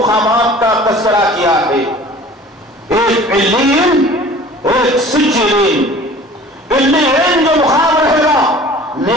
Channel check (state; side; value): normal; both; correlation 0.46